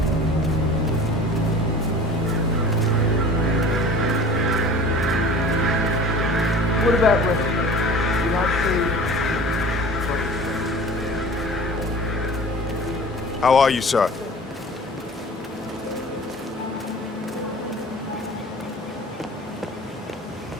What about recipe? You like food? How are you, sir?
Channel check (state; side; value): normal; both; correlation 0.42